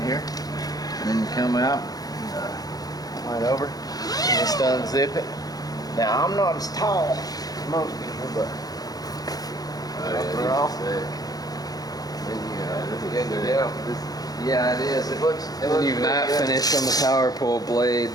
here, and then you come out right over, and just unzip it. Now I'm not as tall as most people, but. Yeah, it is. It looks You matte finish on the power pole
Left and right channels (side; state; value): right; late; 0.18 ms